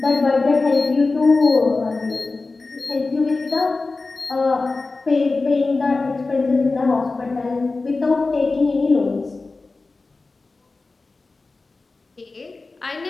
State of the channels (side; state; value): right; quieter; 3.7 dB